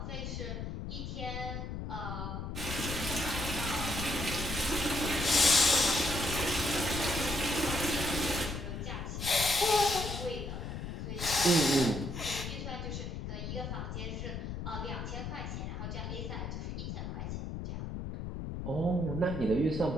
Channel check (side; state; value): left; noise; rumble, 5 dB below the sound